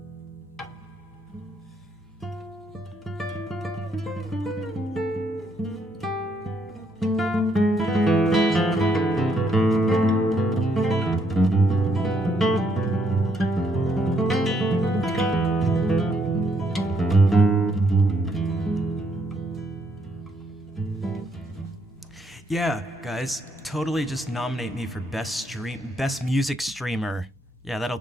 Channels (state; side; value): normal; both; correlation 0.73